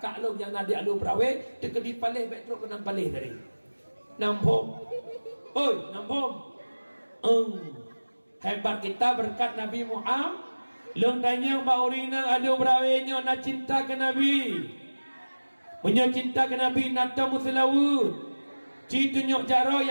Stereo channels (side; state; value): both; inverted; correlation -1.00